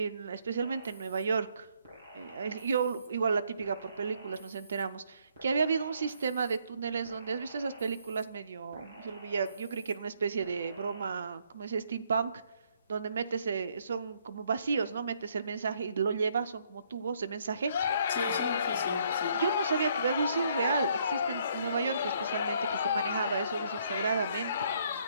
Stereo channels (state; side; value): inverted; both; correlation -0.69